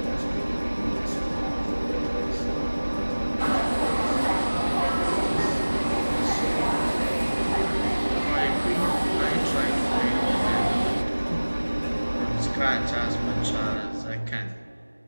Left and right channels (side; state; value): both; inverted; correlation -1.00